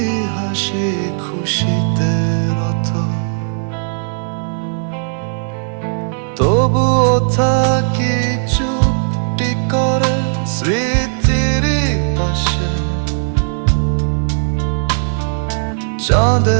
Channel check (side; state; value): left; silent; digital silence